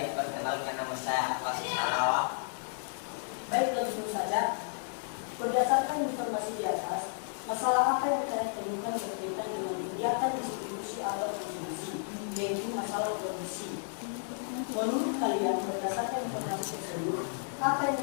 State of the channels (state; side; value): silent; right; digital silence